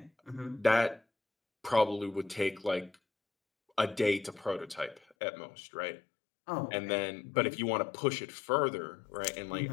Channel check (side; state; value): right; drops out; at 5.0 s